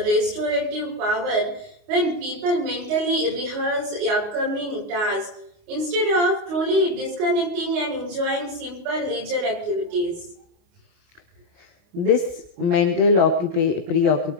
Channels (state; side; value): late; left; 28 ms